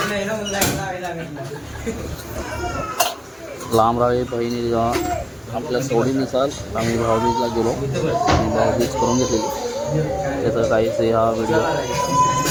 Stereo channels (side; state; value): both; identical; correlation 1.00